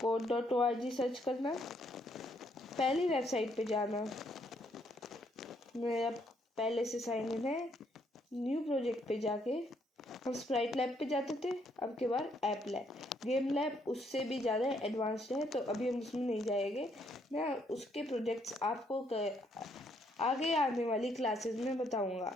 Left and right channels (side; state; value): both; normal; correlation 0.71